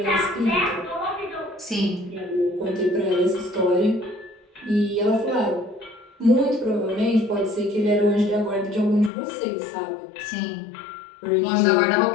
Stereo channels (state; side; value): drops out; right; at 9.1 s